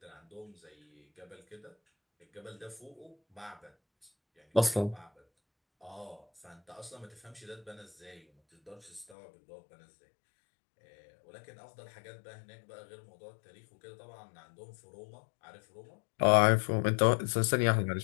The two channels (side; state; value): right; drops out; at 9.2 s